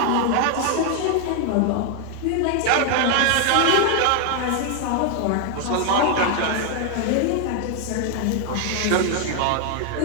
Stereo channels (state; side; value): different; both; correlation 0.00